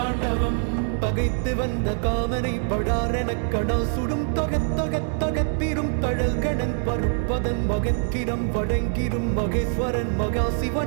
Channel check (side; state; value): left; silent; 56 dB below the other